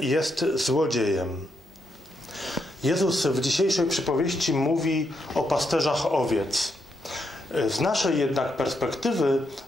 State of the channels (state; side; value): normal; both; correlation 0.80